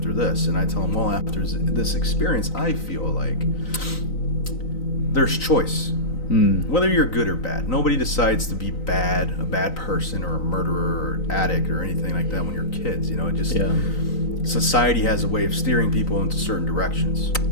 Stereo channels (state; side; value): late; right; 3.9 ms